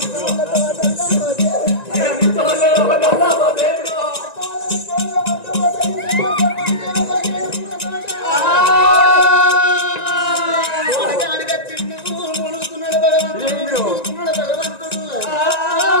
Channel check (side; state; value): right; late; 1.9 ms